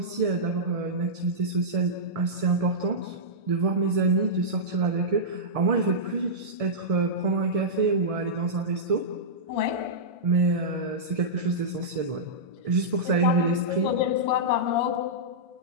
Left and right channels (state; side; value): late; left; 1.6 ms